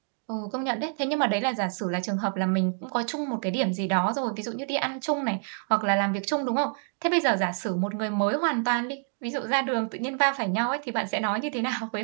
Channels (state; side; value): silent; left; 60 dB below the other